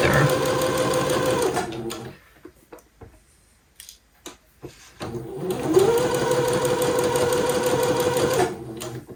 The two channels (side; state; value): both; identical; correlation 1.00